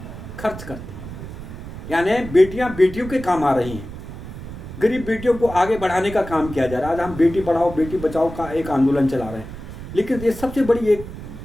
खर्च करती हैं। यानी बेटियां बेटियों के काम आ रही हैं, गरीब बेटियों को आगे बढ़ाने का काम किया जा रहा है। आज हम बेटी पढ़ाओ बेटी बचाओ का एक आंदोलन चला रहे हैं, लेकिन ये सबसे बड़ी एक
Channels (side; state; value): right; noise; rumble, 11 dB below the sound